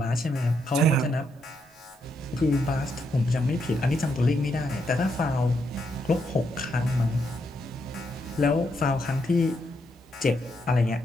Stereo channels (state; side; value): normal; both; correlation 0.78